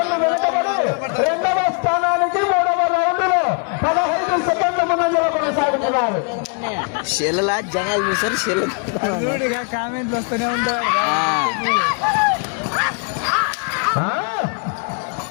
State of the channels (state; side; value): quieter; right; 39.3 dB